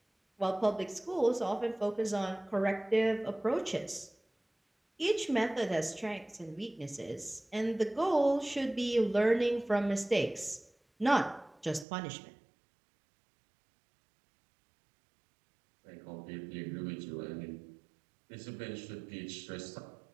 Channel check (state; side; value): drops out; left; at 11.9 s